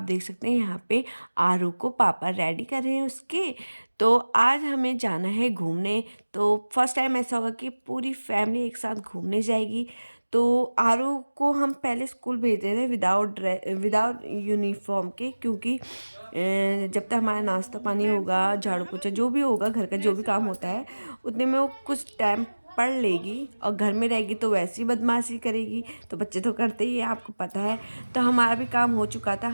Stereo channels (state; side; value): inverted; both; correlation -1.00